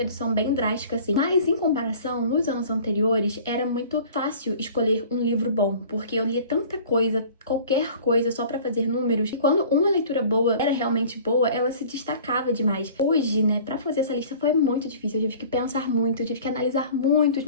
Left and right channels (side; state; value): both; inverted; correlation -0.46